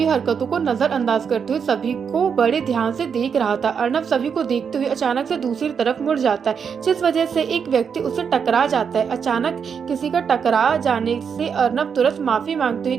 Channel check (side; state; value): left; quieter; 6.7 dB